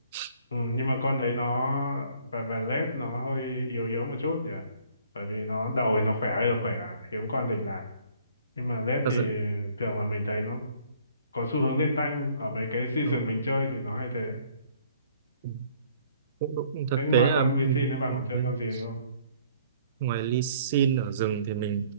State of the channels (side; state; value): both; inverted; correlation -0.60